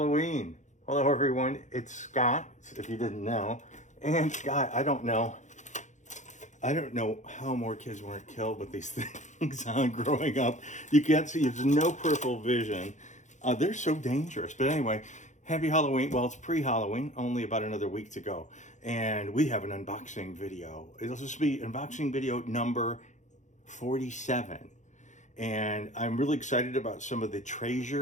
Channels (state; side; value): late; right; 0.35 ms